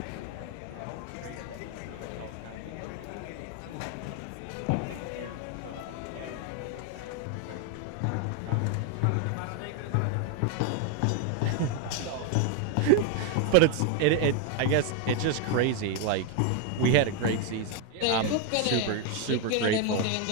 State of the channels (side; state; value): both; different; correlation 0.01